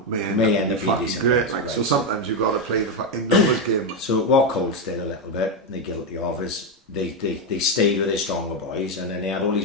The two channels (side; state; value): both; normal; correlation 0.07